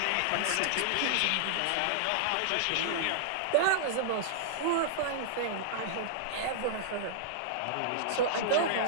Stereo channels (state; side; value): different; both; correlation -0.01